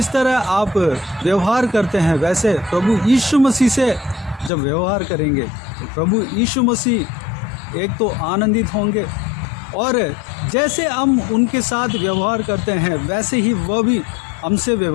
तरह आप व्यवहार करते हैं, वैसे प्रभु यीशु मसीह से जब व्यवहार करेंगे तो प्रभु यीशु मसीह एक तो आनंदित होंगे, और जैसे हम उनके साथ व्यवहार करते हैं वैसे ही वह भी हमसे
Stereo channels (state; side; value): drops out; right; at 4.5 s